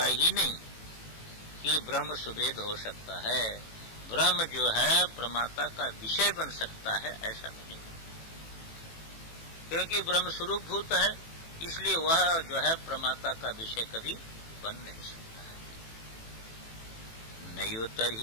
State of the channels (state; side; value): late; right; 18 ms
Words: ही नहीं कि ब्रह्म सुवेद हो सकता है, ब्रह्म जो है प्रमाता का विषय बन सकता है, ऐसा नहीं। क्योंकि ब्रह्म स्वरूप भूत है, इसलिए वह जो है प्रमाता का विषय कभी बन नहीं सकता है। नैव